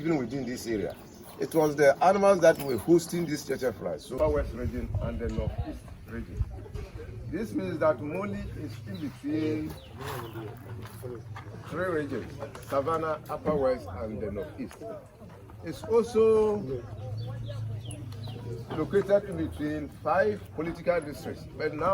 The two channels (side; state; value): both; identical; correlation 1.00